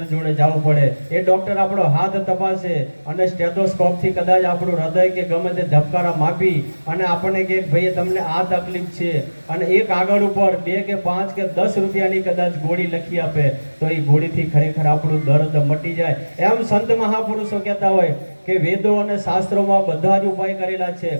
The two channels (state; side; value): inverted; both; correlation -1.00